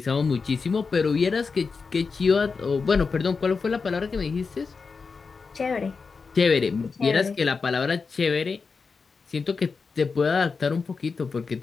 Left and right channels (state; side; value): quieter; right; 4.8 dB